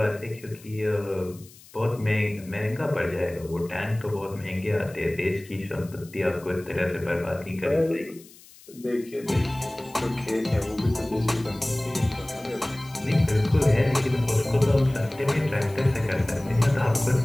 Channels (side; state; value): left; noise; hiss, 23 dB below the sound